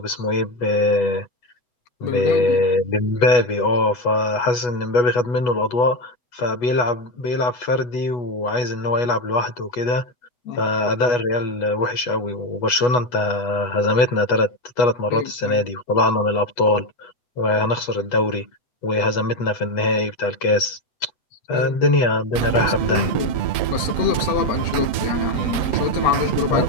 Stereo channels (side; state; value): right; late; 8.2 ms